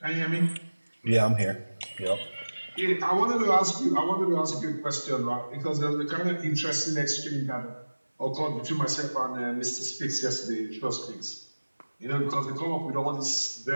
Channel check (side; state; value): both; inverted; correlation -1.00